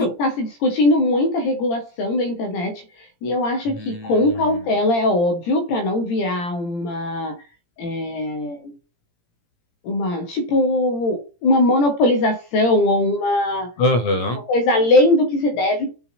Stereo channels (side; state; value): right; late; 17 ms